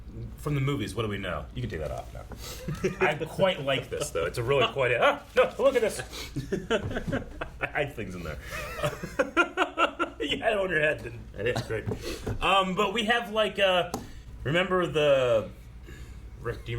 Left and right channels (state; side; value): identical; both; correlation 1.00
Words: from the movies, what do we know? You can take that off now. I quite like this, though. It's a really quite... no, look at this. I hide things in there. You had it on your head. That is great. But we have, like, remember the... Rick, do you